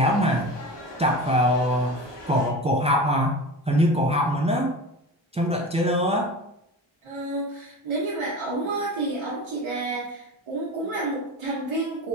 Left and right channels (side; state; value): both; normal; correlation 0.31